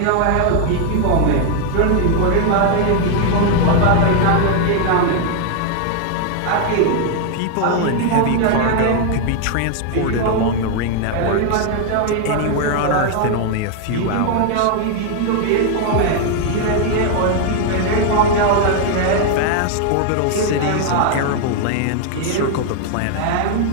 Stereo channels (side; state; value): both; different; correlation 0.00